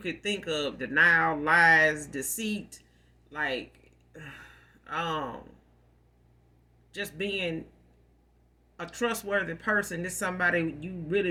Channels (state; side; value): identical; both; correlation 1.00